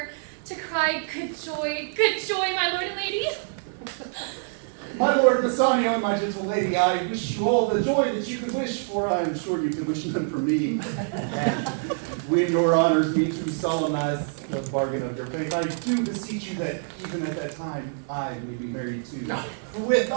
to cry good joy, my lord and lady. My lord Bassanio and my gentle lady, I wish you all the joy that you could wish, for I am sure you could wish none for me. And when your honors me to solemnize the bargain of your faith, I do beseech you that even at that time I may be married too. With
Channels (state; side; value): silent; left; 55 dB below the other